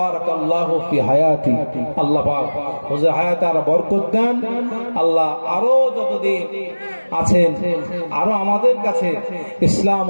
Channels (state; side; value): inverted; both; correlation -1.00